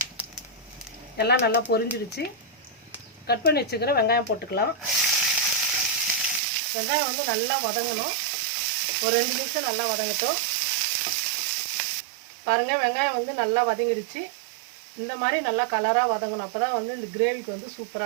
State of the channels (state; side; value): drops out; left; at 6.4 s